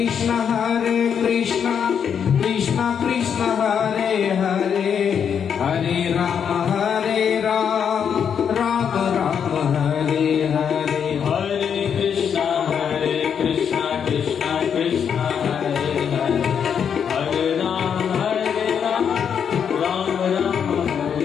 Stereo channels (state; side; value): quieter; right; 7.6 dB